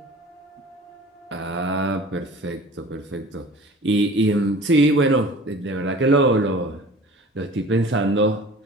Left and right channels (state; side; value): normal; both; correlation 0.43